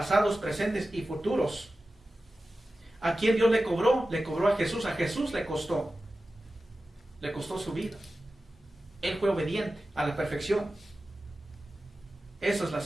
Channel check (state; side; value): normal; both; correlation 0.94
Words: presentes y futuros. ¿A quién Dios le cobró? Le cobró a Jesús le costó su vida. Él fue obediente a la perfección. Esa es la